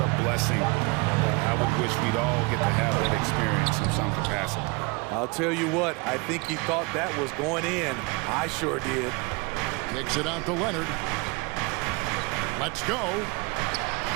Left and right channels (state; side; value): quieter; left; 27.9 dB